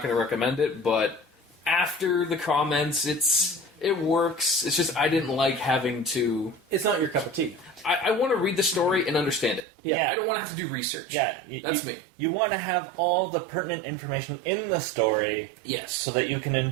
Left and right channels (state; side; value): drops out; left; at 9.6 s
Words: going to recommend it. But after the comments, it works. It's just I didn't like having to. It's not your cup of tea. I want to read the story and understand it. Yeah. I don't want to have to do research. Yeah, that's me. You want to have all the pertinent information in the story, Yes, so that you can